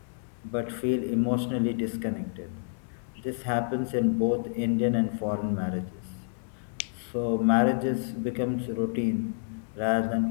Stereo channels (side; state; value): right; silent; 59 dB below the other